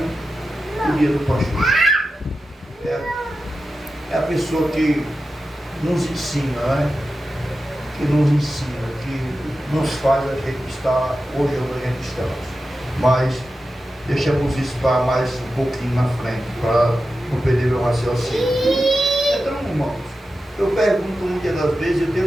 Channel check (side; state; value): both; normal; correlation 0.92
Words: o dia do pastor. É a pessoa que nos ensina, que nos ensina, que nos faz a gente estar hoje onde a gente está. Mas deixamos isso para mais um pouquinho na frente, para não perder meu raciocínio. Então, irmãos, eu pergunto muitas das vezes, eu